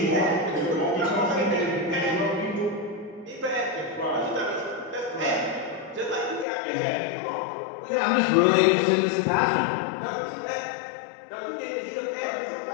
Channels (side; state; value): right; drops out; at 6.5 s